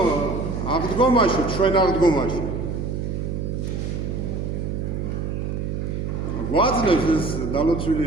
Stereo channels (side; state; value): right; noise; hum, 3 dB below the sound